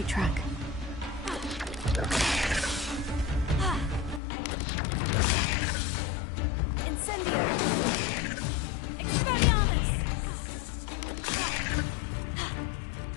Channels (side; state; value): right; drops out; at 4.2 s